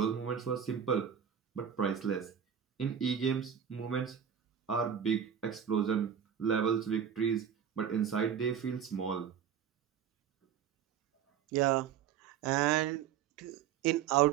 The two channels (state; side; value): quieter; left; 8.5 dB